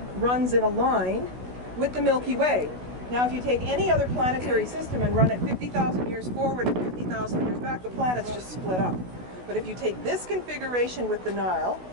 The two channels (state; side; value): late; left; 16 ms